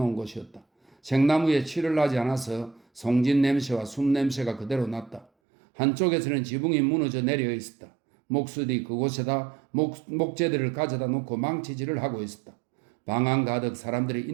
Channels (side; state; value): left; drops out; at 5.2 s